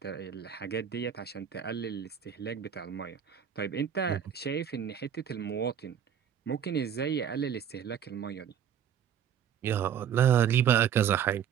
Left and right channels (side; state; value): left; quieter; 8.8 dB